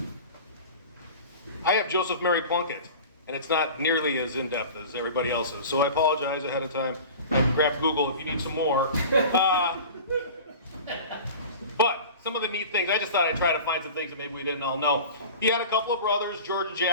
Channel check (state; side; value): inverted; both; correlation -0.37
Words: I have Joseph Mary Plunkett, and it's not nearly as in-depth as everybody else's, so I apologize ahead of time. Grab Google if you need some more. But some of the neat things, I just thought I'd try to find some things that maybe we didn't all know. He had a couple of brothers, George and